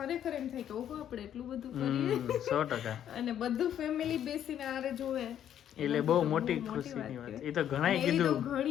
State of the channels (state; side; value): quieter; right; 10.2 dB